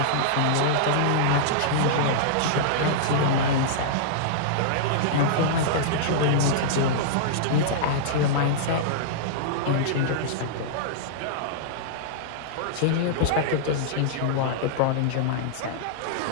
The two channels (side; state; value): both; different; correlation -0.02